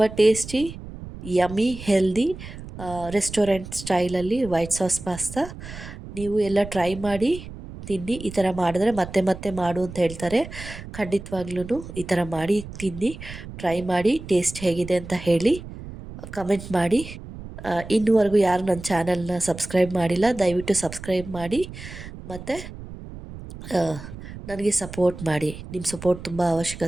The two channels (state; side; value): noise; right; rumble, 13 dB below the sound